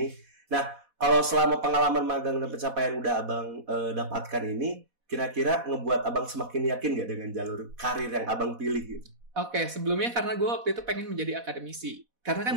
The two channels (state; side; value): late; left; 4.1 ms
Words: Nah, kalau selama pengalaman magang dan pencapaian udah Abang dapatkan ini, kira-kira ngebuat Abang semakin yakin gak dengan jalur karir yang Abang pilih gitu? Oke, sebelumnya karena gue waktu itu pengen menjadi akademisi. Karena kan